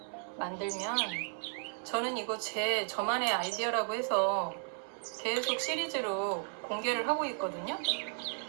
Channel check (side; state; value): left; silent; 55 dB below the other